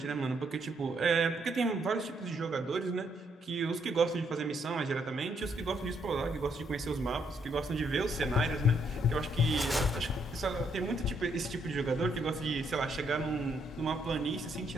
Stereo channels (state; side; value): normal; both; correlation 0.73